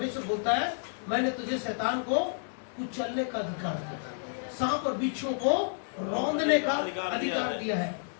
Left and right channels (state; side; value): silent; right; digital silence